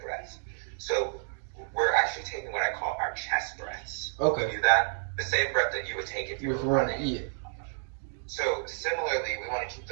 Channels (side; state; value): left; silent; digital silence